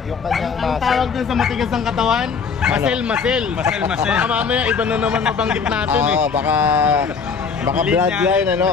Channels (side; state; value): right; quieter; 5.7 dB